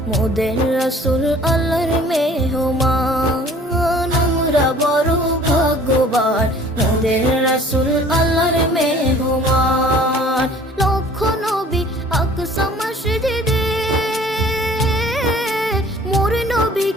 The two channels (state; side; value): normal; both; correlation 0.51